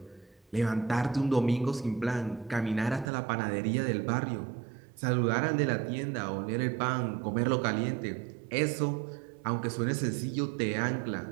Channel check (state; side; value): drops out; left; at 3.1 s